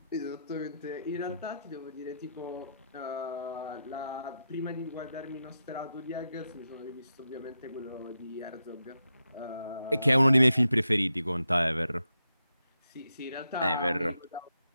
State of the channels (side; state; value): both; inverted; correlation -0.86